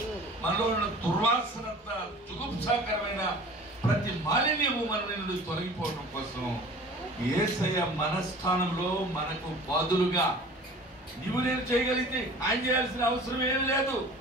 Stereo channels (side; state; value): both; normal; correlation 0.43